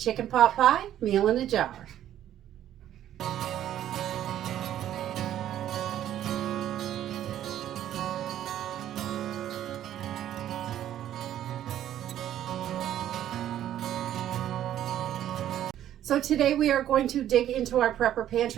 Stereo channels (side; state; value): left; quieter; 11.6 dB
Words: pot pie meal in a jar. So today we are going to dig into our prepper